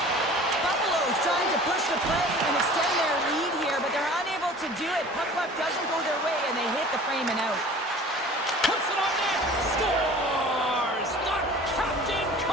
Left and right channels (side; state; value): both; normal; correlation 0.44